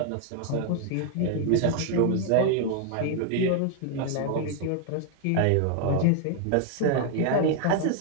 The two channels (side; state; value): both; different; correlation 0.00